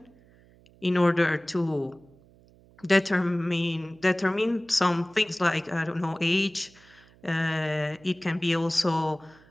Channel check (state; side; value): noise; right; hum, 28 dB below the sound